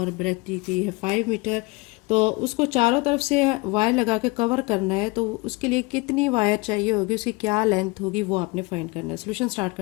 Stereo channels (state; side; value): quieter; right; 25.4 dB